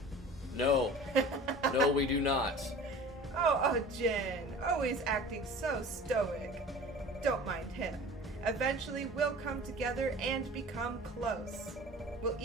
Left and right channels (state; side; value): normal; both; correlation 0.40